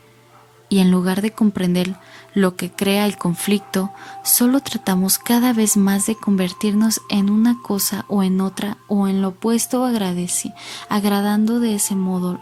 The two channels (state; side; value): identical; both; correlation 1.00